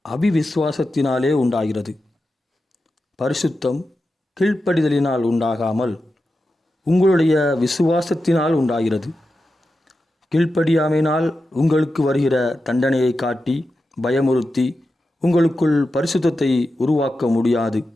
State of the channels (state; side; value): normal; both; correlation 0.90